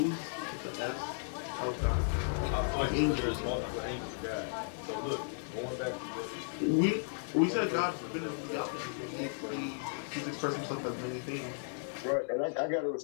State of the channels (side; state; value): right; silent; digital silence